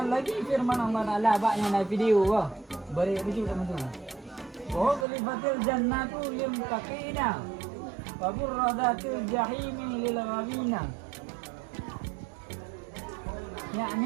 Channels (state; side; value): drops out; left; at 5.1 s